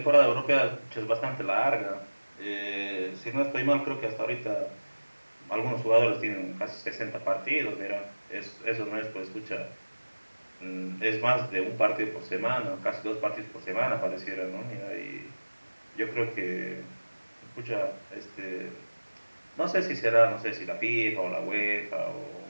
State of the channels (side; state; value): both; inverted; correlation -1.00